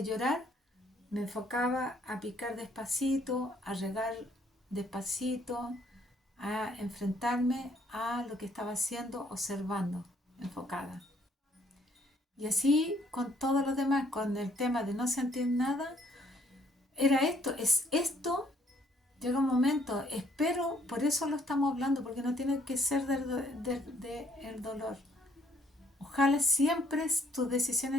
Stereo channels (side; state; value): both; normal; correlation 0.65